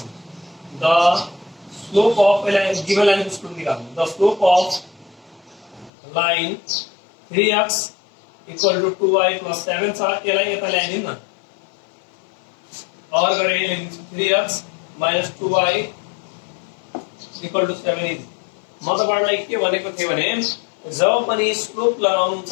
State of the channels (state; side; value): drops out; right; at 5.9 s